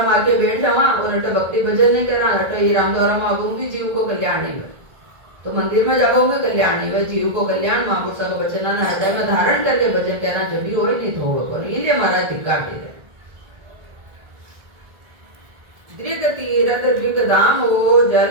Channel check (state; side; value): late; left; 1.7 ms